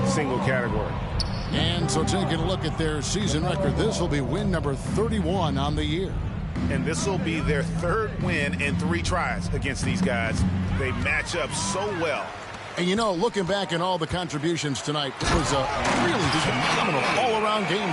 single category. And so taking a look at their season record, this will be win number 31 on the year. And this will be their third win in 3 tries against these guys. They match up so well. And you know, looking back at all the contributions tonight, it was a really phenomenal all-around game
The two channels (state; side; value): identical; both; correlation 1.00